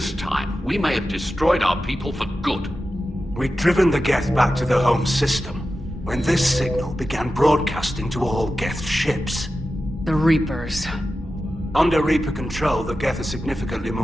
time, we may have destroyed our people for good. We'd driven the Geth back to the home system, when this signal began broadcasting to all Geth ships. The Reapers. Under Reaper control, the Geth are significantly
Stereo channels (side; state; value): both; normal; correlation 0.92